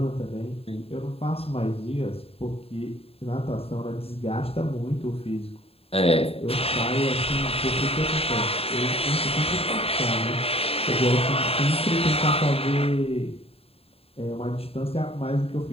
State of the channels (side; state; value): right; late; 0.28 ms